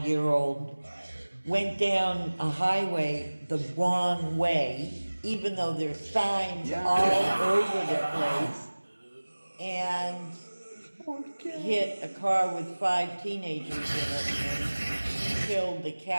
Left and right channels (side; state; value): both; inverted; correlation -1.00